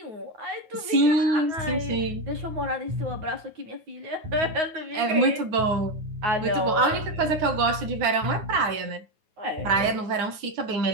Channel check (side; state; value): left; late; 9.3 ms